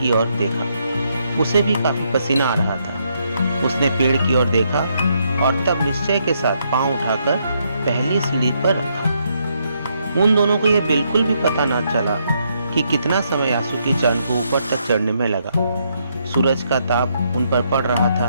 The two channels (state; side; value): inverted; both; correlation -0.76